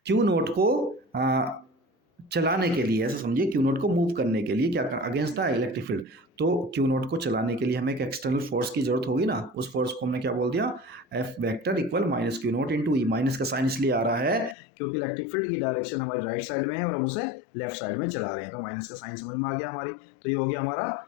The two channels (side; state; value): right; drops out; at 14.6 s